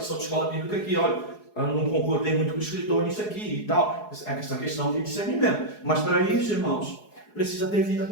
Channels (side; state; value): right; late; 4.8 ms